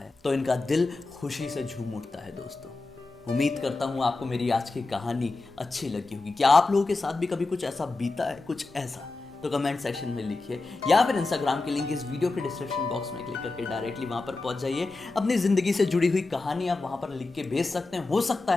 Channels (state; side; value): quieter; right; 3.4 dB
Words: तो इनका दिल खुशी से झूम उठता है। दोस्तों, उम्मीद करता हूँ आपको मेरी आज की कहानी अच्छी लगी होगी। क्या आप लोगों के साथ भी कभी कुछ ऐसा बीता है, कुछ ऐसा? तो कमेंट सेक्शन में लिखिए, या फिर इंस्टाग्राम की लिंक इस वीडियो के डिस्क्रिप्शन बॉक्स में क्लिक करके डायरेक्टली वहां पर पहुंच जाइए। अपनी जिंदगी से जुड़ी हुई कहानी आप वहां पर लिख के भेज सकते हैं। हो सकता